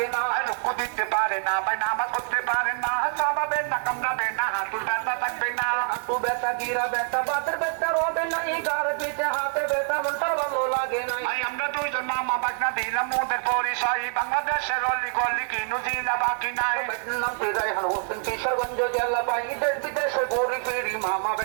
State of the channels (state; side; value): silent; left; 61 dB below the other